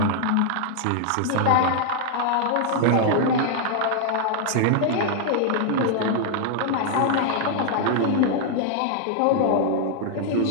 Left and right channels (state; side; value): different; both; correlation -0.01